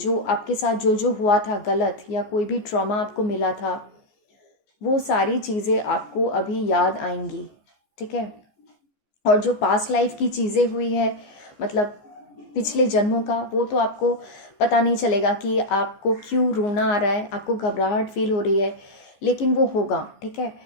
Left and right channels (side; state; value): right; late; 14 ms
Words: आपके साथ जो जो हुआ था गलत, या कोई भी ट्रॉमा आपको मिला था, वो सारी चीज़ें आपको अभी याद आएंगी। ठीक है, और जो पास्ट लाइफ की चीज़ें हुई है मतलब पिछले जन्मों का, वो तो आपको पता नहीं चलेगा कि आपको क्यों रोना आ रहा है, आपको घबराहट फील हो रही है, लेकिन वो होगा। ठीक है,